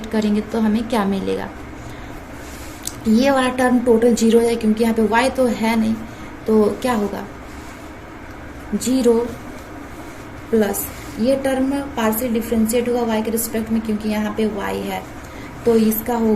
करेंगे तो हमें क्या मिलेगा, ये वाला टर्म टोटल 0 हो जाए क्योंकि यहाँ पे y तो है नहीं, तो क्या होगा 0 प्लस ये टर्म पार्शियल डिफरेंशिएट होगा y के रिस्पेक्ट में क्योंकि यहाँ पे y है, तो इसका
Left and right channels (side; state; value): both; identical; correlation 1.00